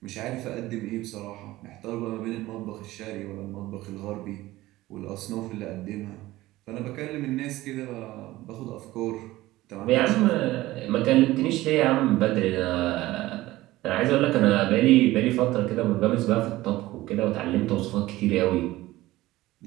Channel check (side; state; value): left; quieter; 17.4 dB